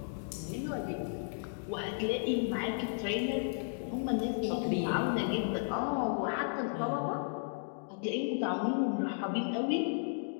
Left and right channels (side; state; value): right; silent; digital silence